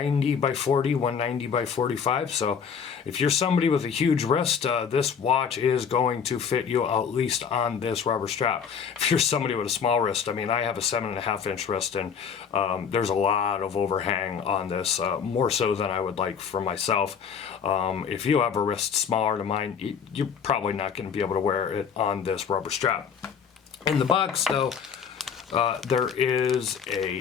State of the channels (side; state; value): right; quieter; 7.0 dB